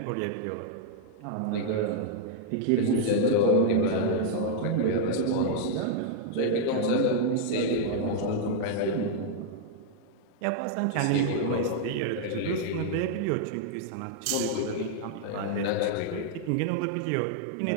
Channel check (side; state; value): both; different; correlation -0.01